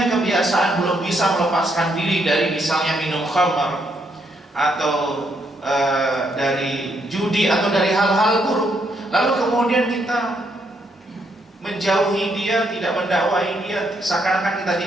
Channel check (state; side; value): normal; both; correlation 0.75